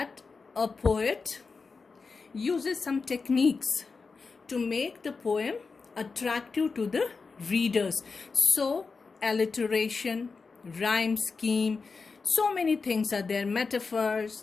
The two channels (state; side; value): quieter; right; 4.6 dB